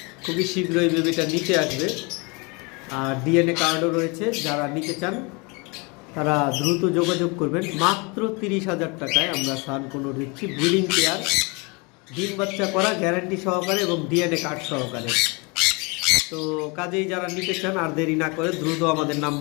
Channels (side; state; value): right; quieter; 29.2 dB